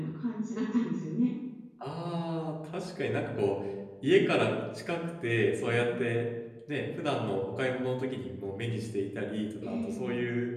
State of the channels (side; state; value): both; identical; correlation 1.00